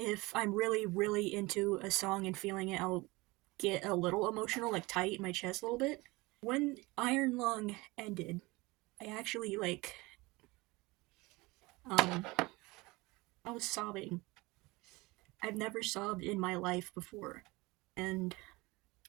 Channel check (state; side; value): quieter; left; 22.9 dB